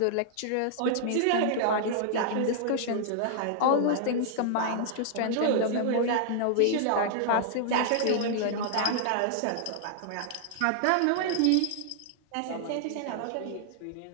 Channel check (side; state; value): both; different; correlation -0.01